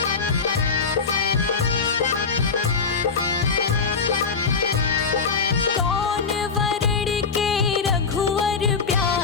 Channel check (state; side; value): quieter; right; 5.1 dB